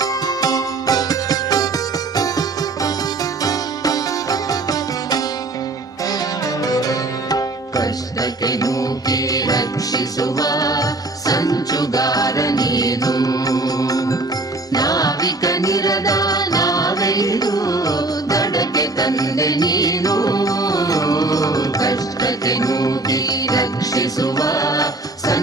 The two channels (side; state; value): left; quieter; 3.0 dB